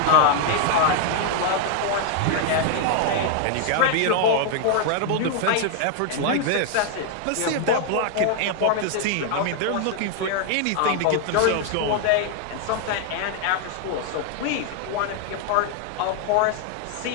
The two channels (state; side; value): different; both; correlation 0.00